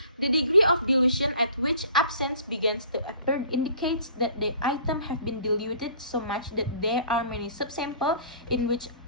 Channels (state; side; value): inverted; both; correlation -0.50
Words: The degree of dilution at which absence begins to appear indicates that the item have been diluted so much that there are many subsamples in which